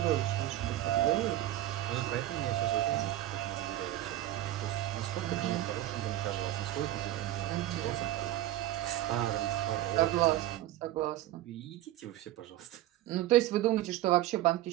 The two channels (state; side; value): quieter; left; 14.4 dB